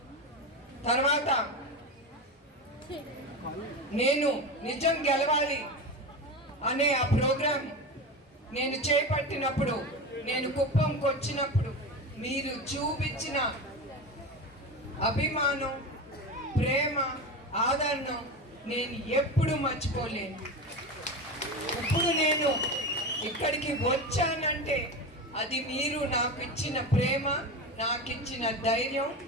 తర్వాత నేను నిజం గెలవాలి అనే ఆ ప్రోగ్రాం నేను చేపట్టినప్పుడు, నేను కుప్పంకి వచ్చినప్పుడు మీరు చూపించిన అభిమానం, ప్రేమ, ఆదరణ నేను ఎప్పుడు మర్చిపోలేను. ఇప్పుడు నేను ఇక్కడికి వచ్చానంటే అది మీరు నాకు ఇచ్చిన ప్రేమ, నాకు ఇచ్చిన ధైర్యం.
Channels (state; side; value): normal; both; correlation 0.23